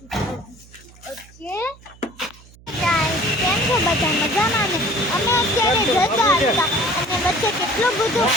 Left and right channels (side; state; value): right; noise; hum, 24 dB below the sound